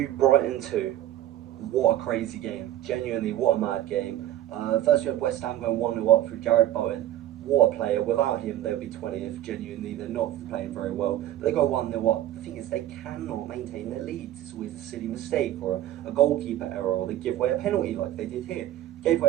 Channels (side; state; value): left; quieter; 13.0 dB